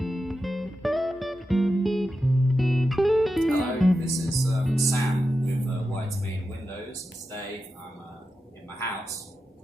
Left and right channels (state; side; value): normal; both; correlation 0.90